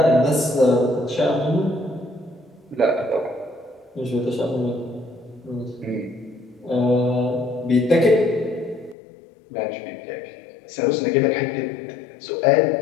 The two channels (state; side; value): drops out; right; at 9.0 s